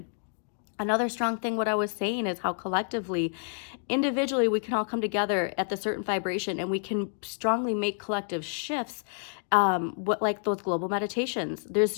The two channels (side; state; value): right; silent; digital silence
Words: Another strong thing, what I was saying, is how collectively, individually, we can all come together at the certain vibration and we can strongly make collective shifts, like those global meditations. There's